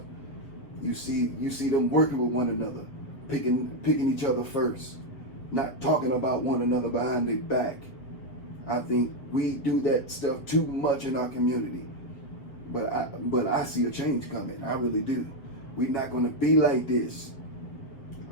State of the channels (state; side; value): late; right; 7.5 ms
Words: You see them working with one another, picking each other first, not talking about one another behind their back. I think we do that stuff too much in our community. But I see a change coming. I really do. We're not going to be like this.